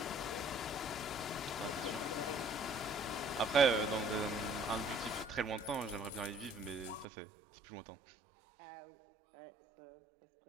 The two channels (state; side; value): drops out; left; at 7.1 s